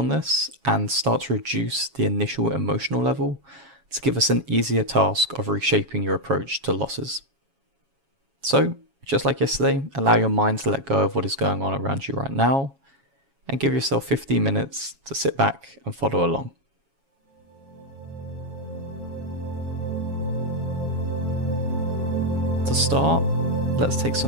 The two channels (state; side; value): late; left; 7.3 ms